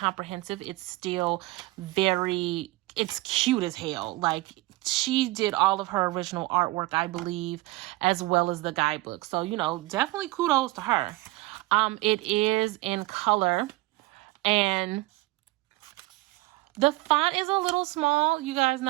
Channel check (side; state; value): left; quieter; 20.4 dB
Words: It's still it's cute as hell. Like, she did all of her original artwork, I believe, as well as the guidebook. So, you know, definitely kudos to her. It is in color, and the font is a little small. You guys